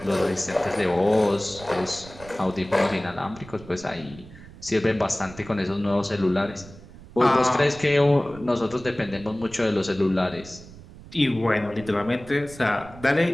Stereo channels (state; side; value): noise; right; rumble, 18 dB below the sound